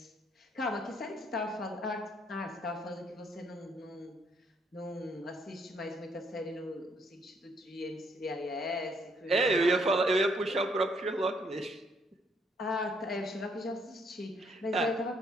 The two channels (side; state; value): both; normal; correlation 0.70